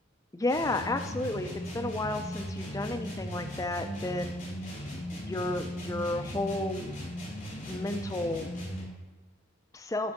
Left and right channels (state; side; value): normal; both; correlation 0.64